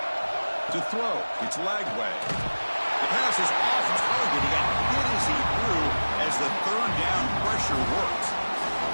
To throw, it's Lagway. The pass is off target. He got hit as he threw as the third down pressure worked.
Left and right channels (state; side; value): inverted; both; correlation -1.00